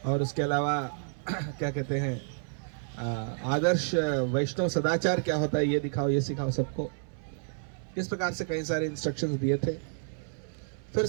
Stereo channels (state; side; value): silent; left; digital silence